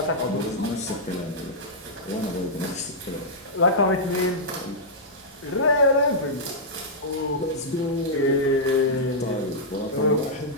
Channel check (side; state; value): both; normal; correlation -0.09